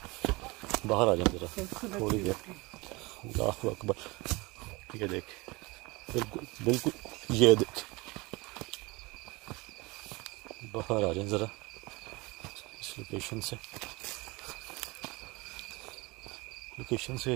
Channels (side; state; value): left; quieter; 24.3 dB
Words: बाहर आ जाए जरा थोड़ी देर। अल्लाहु अकबर। ये देख, बिल्कुल ये देख, बाहर आ जाए ज़रा इस लोकेशन से